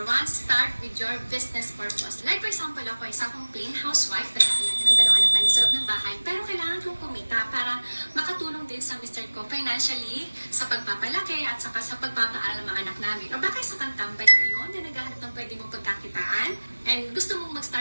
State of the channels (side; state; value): both; inverted; correlation -1.00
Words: 1, start with your business purpose. Like for example, ako isa akong plain housewife, nag-aalaga ng dalawang anak namin sa loob ng bahay, pero kailangan kong kumita para makatulong din sa Mr. ko financially, sa pagpapalaki at saka sa pagpapaaral ng mga anak namin. O baka isa kang tambay ngayon na naghahanap ng pwede mong pagkakitaan and gusto mong